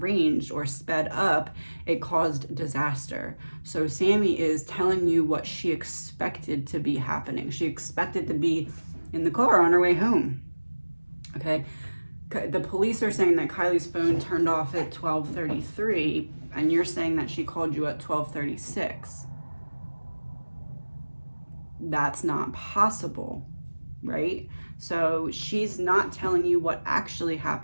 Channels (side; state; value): both; inverted; correlation -1.00